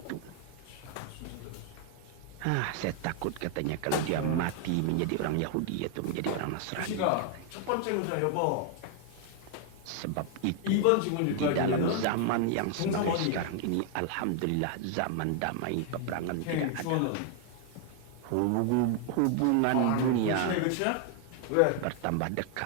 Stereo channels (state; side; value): different; both; correlation 0.00